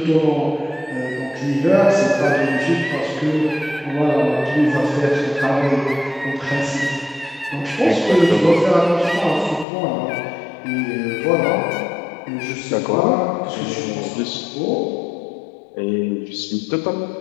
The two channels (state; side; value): drops out; right; at 9.7 s